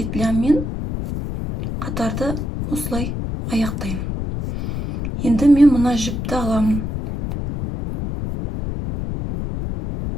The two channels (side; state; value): left; noise; rumble, 4 dB below the sound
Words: қатарды осылай аяқтаймын. Енді мен мына жіпті аламын.